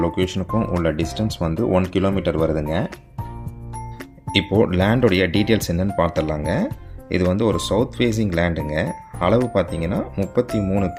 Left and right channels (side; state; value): both; identical; correlation 1.00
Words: லொக்கேஷனுக்கும் உள்ள டிஸ்டன்ஸ் 1 கிலோமீட்டர் வருதுங்க. இப்போது லேண்டோடைய டீட்டெயில்ஸ் என்னன்னு பார்த்துடலாங்க. இது ஒரு சவுத் ஃபேஸிங் லேண்டுங்க. அளவு பார்த்தீங்கன்னா